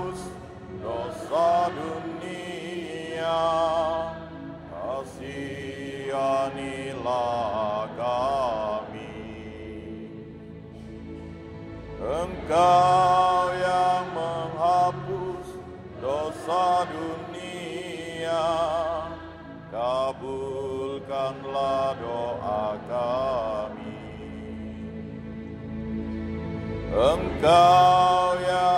dosa dunia, kasihanilah kami. Engkau yang menghapus dosa dunia, kabulkanlah doa kami. Engkau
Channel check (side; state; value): both; identical; correlation 1.00